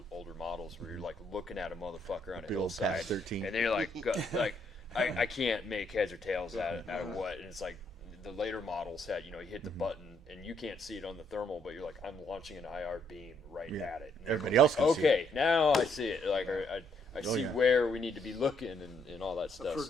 older models where you're like looking at a motherfucker on a hillside, Patch 13. and then you're like, I can't make heads or tails out of what, and it's like the later models had, you hit the button and you can't see it on the thermal, but you're like, I'm launching an IR beam at it. And Everybody else can see it. Okay, now I see it. Like I see where we need to be looking and all that stuff.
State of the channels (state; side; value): normal; both; correlation 0.71